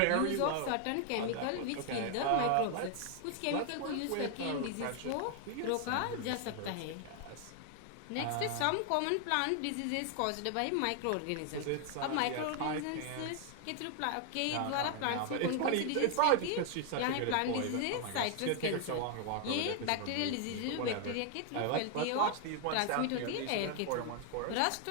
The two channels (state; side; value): different; both; correlation 0.00